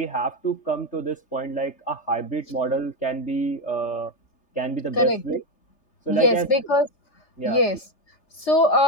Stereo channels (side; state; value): right; late; 3.3 ms